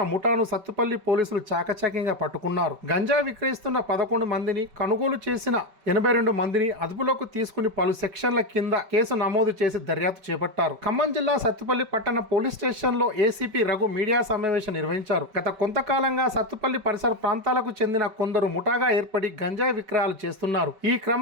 ముఠాను సత్తుపల్లి పోలీసులు చాకచక్యంగా పట్టుకున్నారు. గంజాయి విక్రయిస్తున్న 11 మందిని, కొనుగోలు చేసిన 82 మందిని అదుపులోకి తీసుకుని పలు సెక్షన్ల కింద కేసు నమోదు చేసి దర్యాప్తు చేపట్టారు. ఖమ్మం జిల్లా సత్తుపల్లి పట్టణ పోలీస్ స్టేషన్ లో ఏసీపీ రఘు మీడియా సమావేశం నిర్వహించారు. గత కొంతకాలంగా సత్తుపల్లి పరిసర ప్రాంతాలకు చెందిన కొందరు ముఠాగా ఏర్పడి గంజాయి విక్రయాలు చేస్తున్నారు. ఈ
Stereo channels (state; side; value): late; left; 5.2 ms